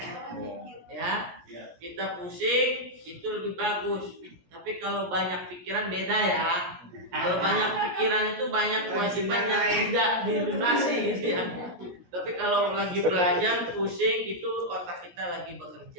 Ya, kita pusing itu lebih bagus. Tapi kalau banyak pikiran beda ya. Kalau banyak pikiran itu banyak kewajiban yang tidak dilunasi gitu ya. Tapi kalau lagi belajar pusing itu otak kita lagi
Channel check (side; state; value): left; late; 17 ms